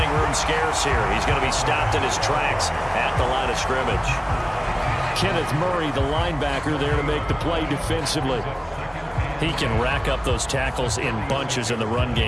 room scarce here. He's going to be stopped in his tracks at the line of scrimmage. Kenneth Murray, the linebacker, there to make the play defensively. He can rack up those tackles in bunches in the run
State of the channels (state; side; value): identical; both; correlation 1.00